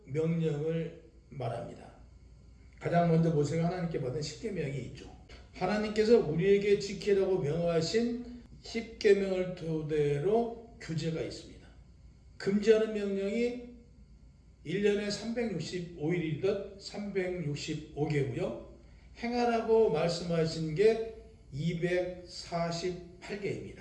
명령을 말합니다. 가장 먼저 모세가 하나님께 받은 10계명이 있죠. 하나님께서 우리에게 지키라고 명하신 10계명을 토대로 규제가 있습니다. 금지하는 명령이 1년에 365일이듯 365개고요. 행하라고 말씀하신 게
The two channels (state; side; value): identical; both; correlation 1.00